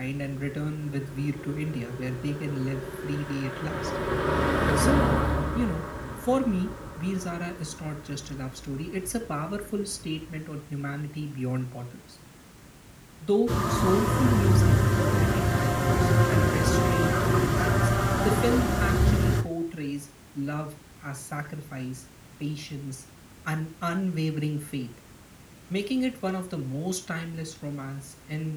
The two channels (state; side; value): identical; both; correlation 1.00